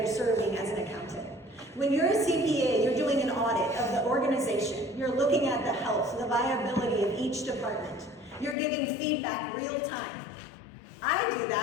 serving as an accountant. When you're a CPA, you're doing an audit of the organization. You're looking at the health, the viability of each department. You're giving feedback real time. I do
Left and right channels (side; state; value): right; drops out; at 8.6 s